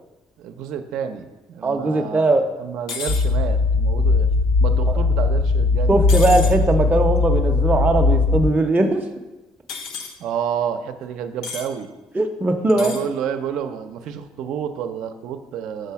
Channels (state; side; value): normal; both; correlation 0.63